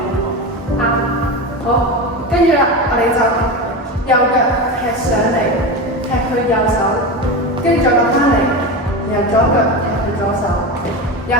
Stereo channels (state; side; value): normal; both; correlation 0.21